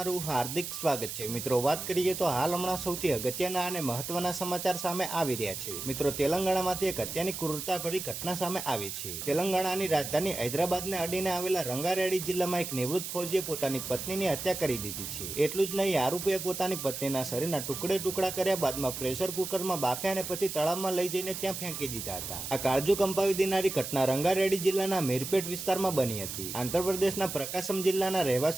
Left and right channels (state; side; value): noise; right; hiss, 6 dB below the sound